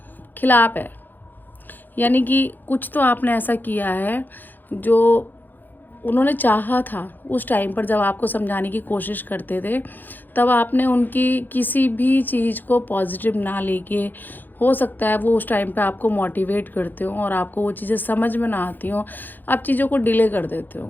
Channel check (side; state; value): right; late; 0.088 ms